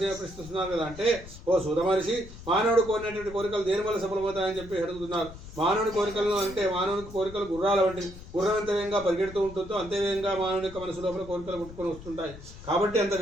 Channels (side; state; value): left; noise; rumble, 16 dB below the sound